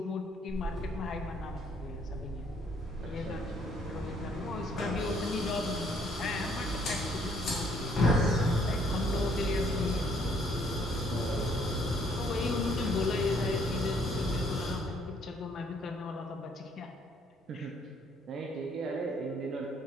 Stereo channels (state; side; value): normal; both; correlation 0.65